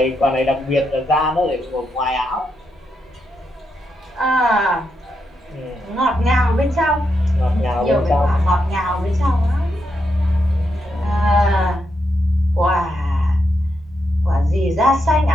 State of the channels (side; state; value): both; normal; correlation 0.82